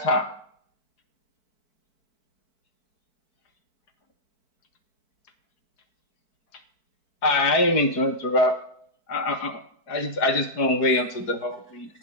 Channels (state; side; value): late; right; 4.6 ms